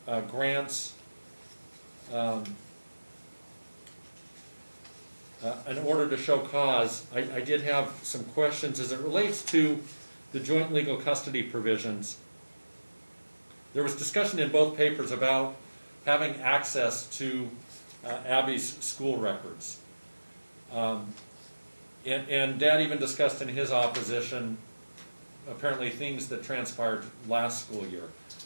grants an order to show cause, I did have some questions as it relates to the joint legal custody provisions. There was discussion in both papers about having access to Abby's school records. And Dad even discussed in his opposition apparently things that transpired last school year.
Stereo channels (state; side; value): inverted; both; correlation -1.00